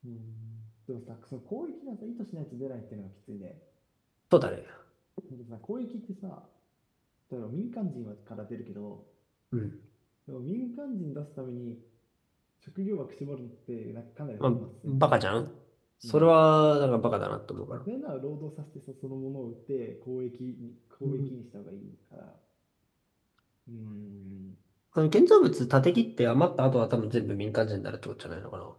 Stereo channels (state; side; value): identical; both; correlation 1.00